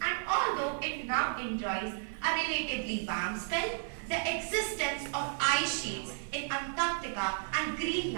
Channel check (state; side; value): silent; left; 56 dB below the other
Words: and although it now enjoys a relatively warm spell, the existence of ice sheets in Antarctica and